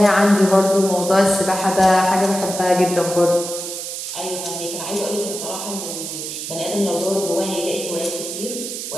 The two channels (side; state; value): right; noise; hiss, 7 dB below the sound